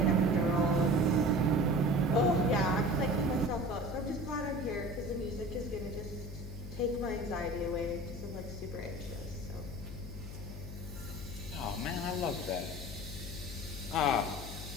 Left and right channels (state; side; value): noise; left; hum, 9 dB below the sound